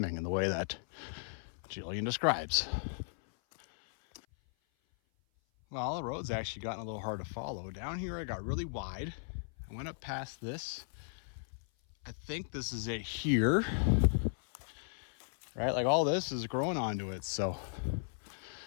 in the way that Jillian describes. Well, the road's actually gotten a little hard to follow. Down here it got really wide. I went up past this. I think this is it here. Right, like all this is growing onto it. So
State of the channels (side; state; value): right; silent; 54 dB below the other